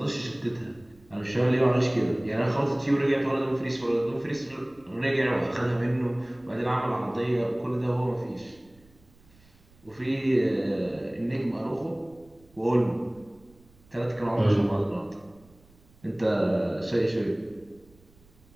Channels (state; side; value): noise; right; rumble, 28 dB below the sound